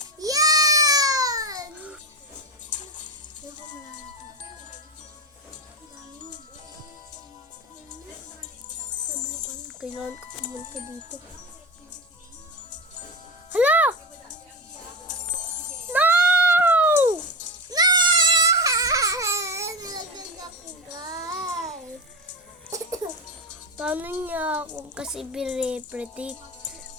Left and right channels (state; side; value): normal; both; correlation 0.20